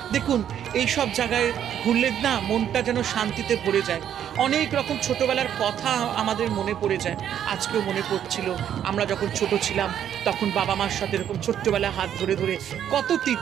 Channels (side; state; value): left; quieter; 9.8 dB